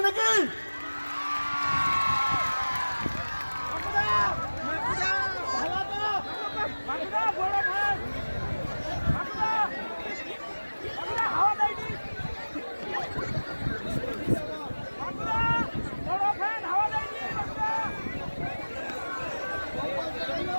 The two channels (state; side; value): inverted; both; correlation -1.00